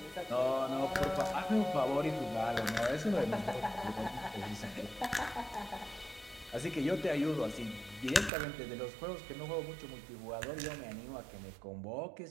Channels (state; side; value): drops out; left; at 8.3 s